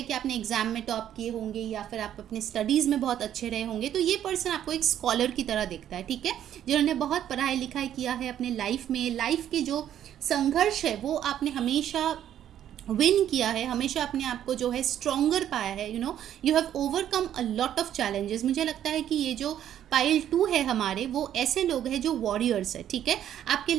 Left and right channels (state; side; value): quieter; left; 10.7 dB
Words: कि आपने एग्जाम में टॉप किए होंगे या फिर आप अपने स्टडीज़ में बहुत अच्छे रहे होंगे, तो ये पर्सन आपको एक स्कॉलर की तरह दिखता है, ठीक है। जिन्होंने बहुत पढ़ाई लिखाई किया है अपने लाइफ में, लाइफ के जो संघर्ष है वो आपने हमेशा विन किया है, हमेशा अपने आप को जो है स्ट्रॉन्गर पाया है, you have overcome a lot of challenges. मुझे लगता है कि ये जो पाइल 2 है हमारे, वो ऐसे लोग हैं जो वॉरियर्स है, ठीक है। आपके